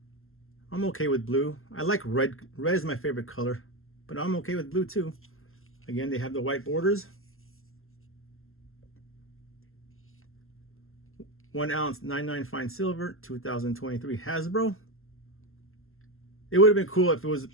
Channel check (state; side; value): late; right; 0.61 ms